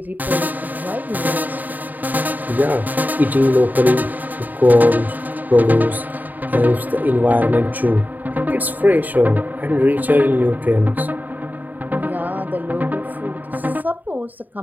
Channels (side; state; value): left; late; 0.084 ms